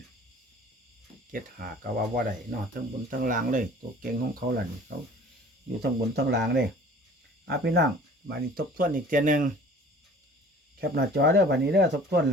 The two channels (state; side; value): normal; both; correlation 0.48